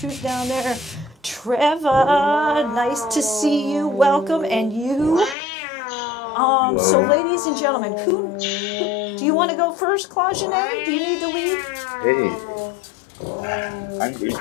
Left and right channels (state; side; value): drops out; right; at 5.4 s